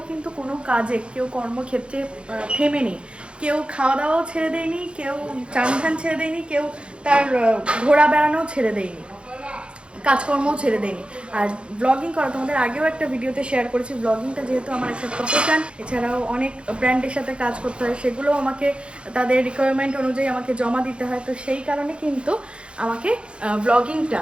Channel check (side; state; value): left; late; 0.057 ms